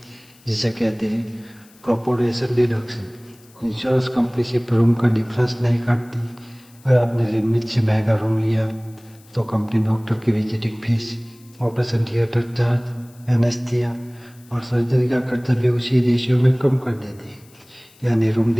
जिसे कहते हैं कॉर्पोरेशन डिडक्शन। इंश्योरेंस कंपनी सिर्फ रूम का डिफरेंस नहीं काटती। अगर आपने लिमिट से महंगा रूम लिया तो कंपनी डॉक्टर की visiting fees, operation theatre charge, anaesthesia और सर्जरी का खर्चा भी उसी रेशियो में कम कर देती है। यानी रूम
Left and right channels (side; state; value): left; noise; hiss, 28 dB below the sound